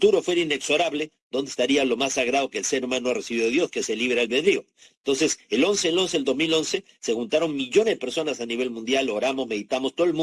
fuera inexorable, ¿dónde estaría lo más sagrado que el ser humano ha recibido de Dios, que es el libre albedrío? Entonces, el 2011, se juntaron millones de personas a nivel mundial, oramos, meditamos, todo el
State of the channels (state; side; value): identical; both; correlation 1.00